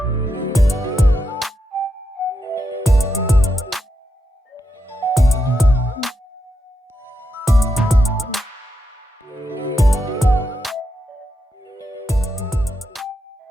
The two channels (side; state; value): both; normal; correlation 0.84